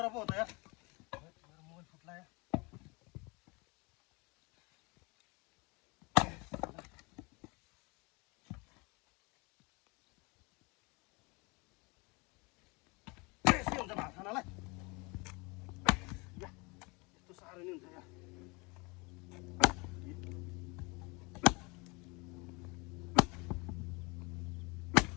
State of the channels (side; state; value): right; quieter; 27.8 dB